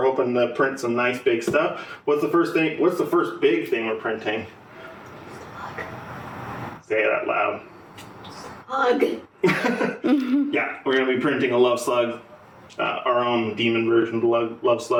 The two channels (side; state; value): both; identical; correlation 1.00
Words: hoping to print some nice big stuff. What's the first big thing we're printing? Say it out loud. Hug. Yeah, we're gonna be printing a Love Slug. Our own demon version of the Love